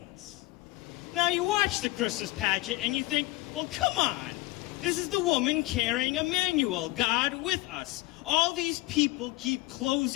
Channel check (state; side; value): quieter; right; 20.2 dB